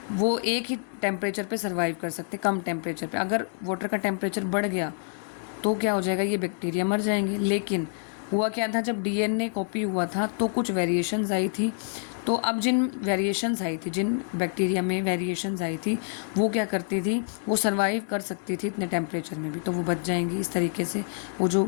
वो एक ही टेम्परेचर पे सर्वाइव कर सकते, कम टेम्परेचर पे। अगर वाटर का टेम्परेचर बढ़ गया तो क्या हो जाएगा, ये बैक्टीरिया मर जाएंगे। लेकिन हुआ क्या था, जब डीएनए कॉपी हुआ था तो कुछ वेरिएशंस आई थी, तो अब जिन वेरिएशंस आई थी, जिन बैक्टीरिया में वेरिएशंस आई थी, वो क्या करती थी, वो सर्वाइव कर सकती थी इतने टेम्परेचर में भी, तो वो बच जाएंगी। इस तरीके से वो जो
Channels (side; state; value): right; silent; 60 dB below the other